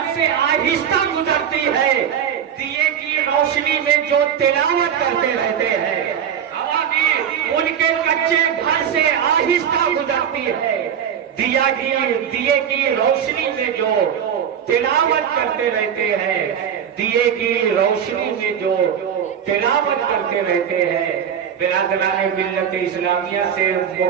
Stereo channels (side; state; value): left; quieter; 8.5 dB